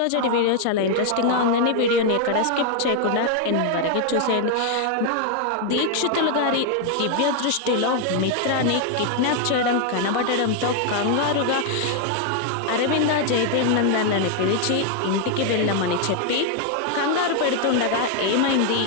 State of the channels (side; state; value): both; different; correlation 0.00